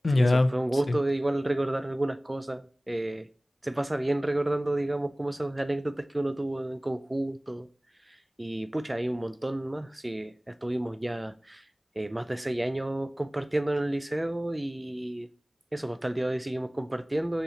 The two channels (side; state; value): both; normal; correlation 0.98